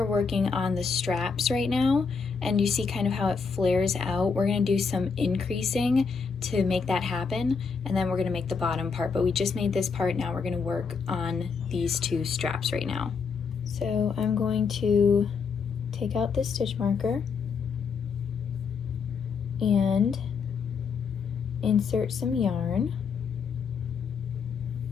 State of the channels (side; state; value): right; quieter; 5.4 dB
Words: working on the straps right now, and you see kind of how it flares out. We're going to do some increasing to make that happen, and then we're going to make the bottom part, but we just made this part. Now we're going to work on these 2 straps right now. So I'm going to take out this stitch marker and insert some yarn,